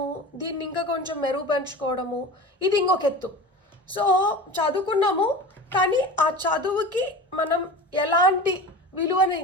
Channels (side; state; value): both; normal; correlation 0.33